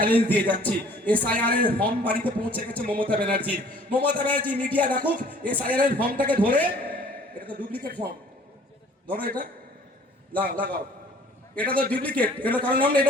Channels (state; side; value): normal; both; correlation 0.54